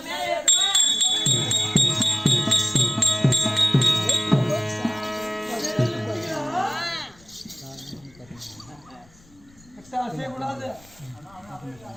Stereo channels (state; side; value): noise; left; rumble, 27 dB below the sound